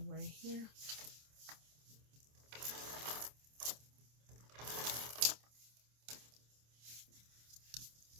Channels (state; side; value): late; left; 26 ms